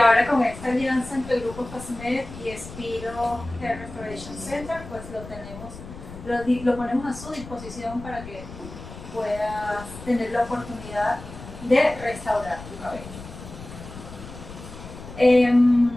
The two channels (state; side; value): noise; left; rumble, 14 dB below the sound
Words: con esta alianza entre el Grupo FASMED y Spiro Hair Restoration Center, pues lo ponemos a su disposición para que puedas tener la oportunidad de restaurar tu cabello.